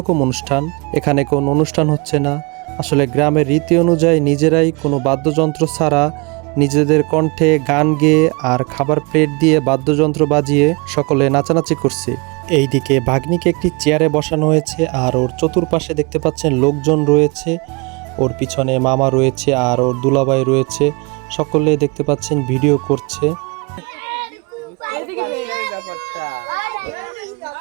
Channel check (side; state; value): left; quieter; 29.4 dB